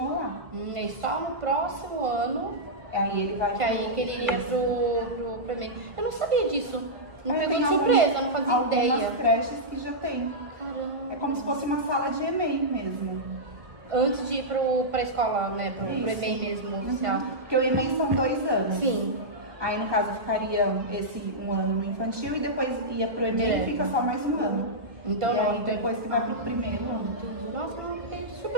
lá. E só no próximo ano aí ele vai que ele iria pro EMEI. Eu não sabia disso. Não pegou de surpresa, não fazia ideia. Algumas creches que já tem. Caramba. É como se fosse uma sala de EMEI mesmo. Antes de ir pra escola, né? Pro EMEI mesmo, oficial. Porque o EMEI são 2 anos. Sim. Aí, no caso, ficaria esse um ano no infantil e depois ia pro EMEI e fica só mais um ano. Então não, então depois que vai pro primeiro ano. Entendi. Nossa, fiquei de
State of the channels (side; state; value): left; late; 1.5 ms